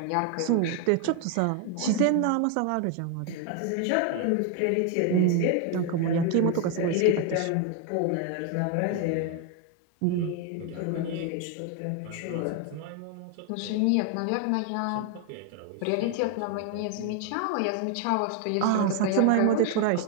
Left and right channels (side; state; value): both; different; correlation 0.01